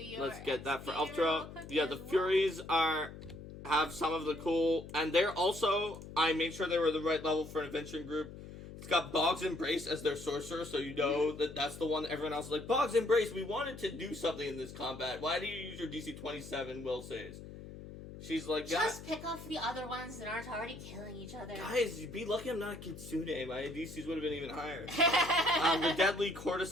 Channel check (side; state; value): left; noise; hum, 13 dB below the sound